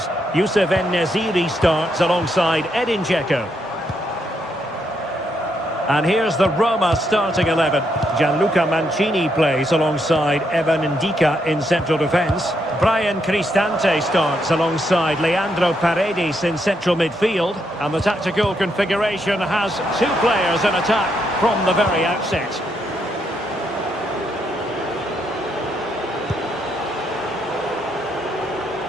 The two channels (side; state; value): both; normal; correlation 0.78